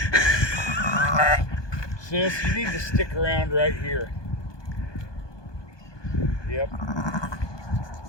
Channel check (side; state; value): right; late; 1.2 ms